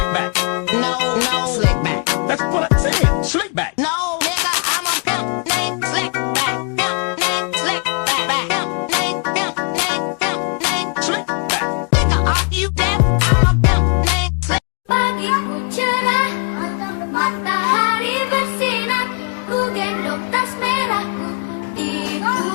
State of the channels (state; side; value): quieter; right; 38.6 dB